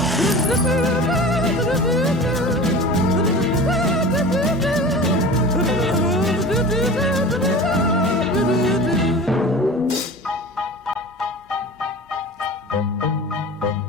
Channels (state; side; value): normal; both; correlation 0.36